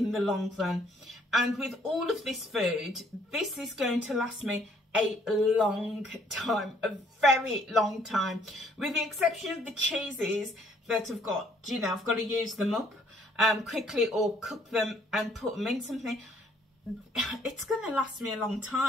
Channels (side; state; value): both; normal; correlation 0.64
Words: the long run. And with all of this food, this is going to last me a long time, a very long time, with the exception of the cheeses that I've got, you know, I've got to use them up quickly, or cook them and put them in something. It's going to last me a long